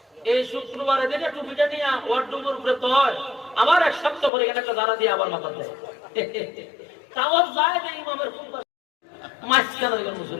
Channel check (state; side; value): drops out; right; at 4.3 s